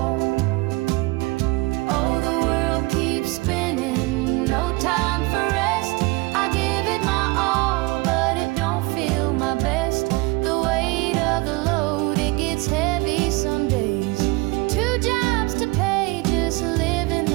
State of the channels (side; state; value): left; quieter; 23.7 dB